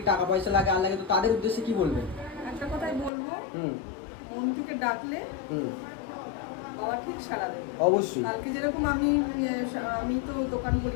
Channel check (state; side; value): drops out; right; at 3.1 s